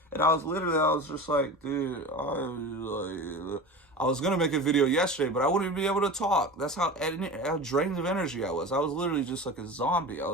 and I was just like, dude, I was going to make a video yesterday, but I wouldn't be able to talk. That's how drained of energy I was. I was literally just like a zombie. I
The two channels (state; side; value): normal; both; correlation 0.31